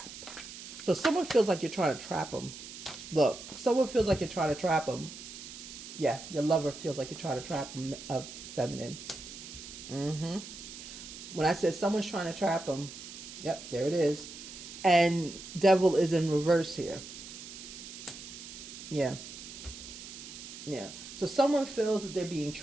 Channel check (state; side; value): noise; right; hiss, 12 dB below the sound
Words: So someone feels like you're trying to trap them. Look, someone feels like you're trying to trap them. Yeah, your lover feels like you're trying to trap them, feminine. When I said someone's trying to trap them, yep, there it is. And Devil is in reverse here. Yeah. Yeah. So someone feels that they're being